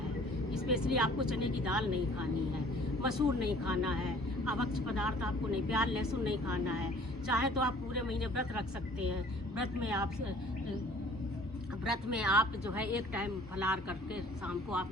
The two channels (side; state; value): both; normal; correlation 0.53